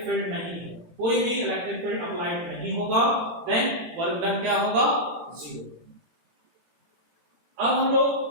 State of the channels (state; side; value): late; left; 18 ms